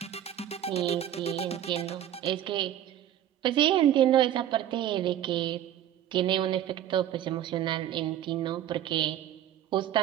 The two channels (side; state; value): left; quieter; 11.4 dB